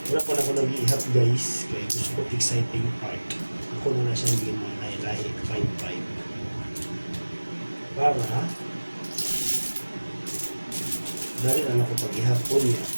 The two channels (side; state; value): both; inverted; correlation -1.00